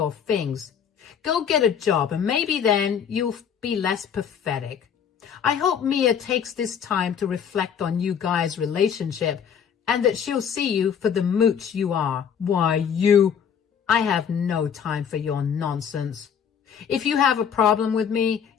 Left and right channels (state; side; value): quieter; right; 7.7 dB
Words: things. Go get a job, and maybe then you'll be less pathetic. I hope Mia takes this time to reflect on you guys' relationship, and that she'll see you for the mooch you are. Why, I have no time for your nonsense. If you have a problem with me,